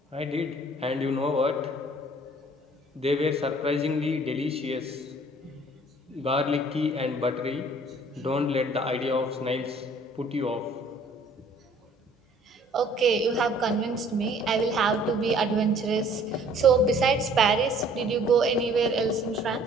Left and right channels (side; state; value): both; normal; correlation 0.55